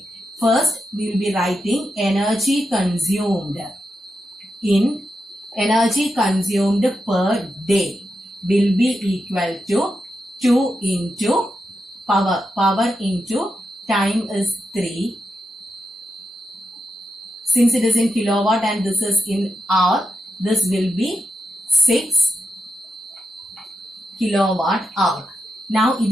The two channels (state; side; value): normal; both; correlation 0.87